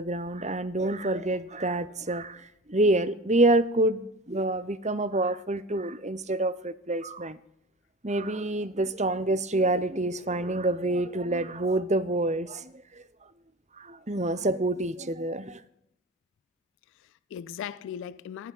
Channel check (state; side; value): normal; both; correlation 0.35